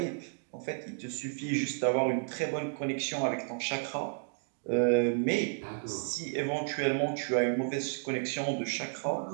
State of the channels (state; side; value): silent; left; 56 dB below the other